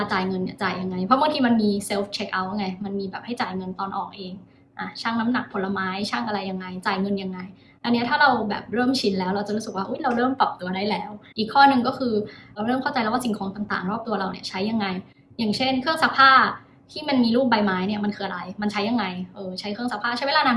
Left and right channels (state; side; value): identical; both; correlation 1.00